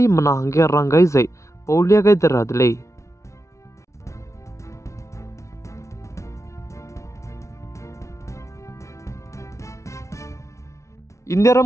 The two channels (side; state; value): right; late; 0.14 ms